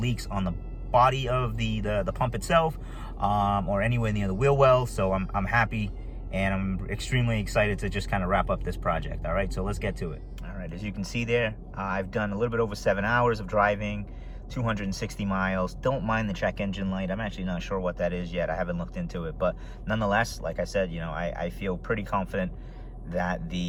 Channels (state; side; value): identical; both; correlation 1.00